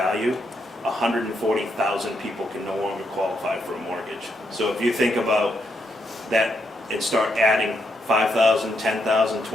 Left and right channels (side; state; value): both; normal; correlation 0.79